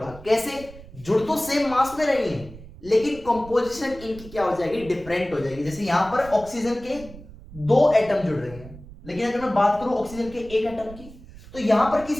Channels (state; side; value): noise; right; rumble, 17 dB below the sound